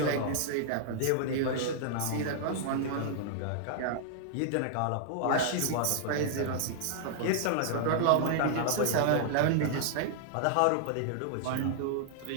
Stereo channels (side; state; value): both; different; correlation -0.01